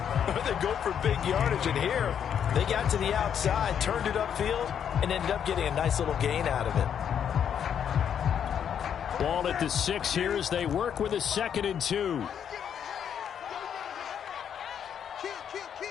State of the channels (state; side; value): quieter; right; 8.5 dB